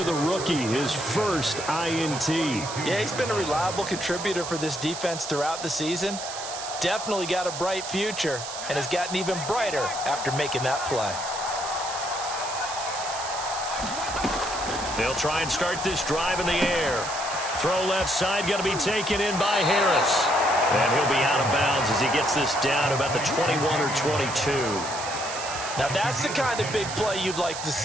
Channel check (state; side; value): noise; right; hiss, 8 dB below the sound